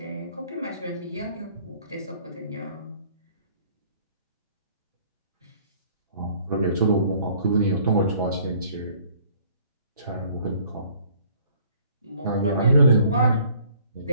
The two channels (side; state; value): both; inverted; correlation -0.57